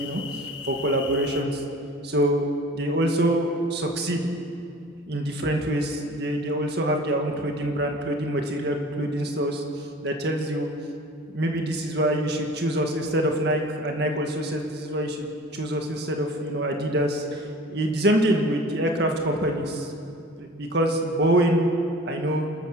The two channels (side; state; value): both; normal; correlation 0.43